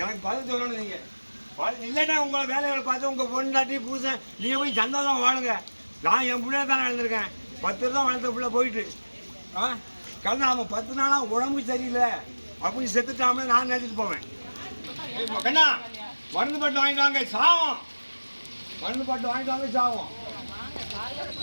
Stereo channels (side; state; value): both; inverted; correlation -1.00